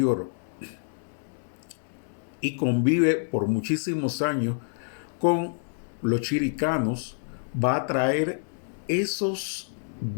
y convive por muchísimos años con los chiricanos, va a traer esos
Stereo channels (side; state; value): right; silent; digital silence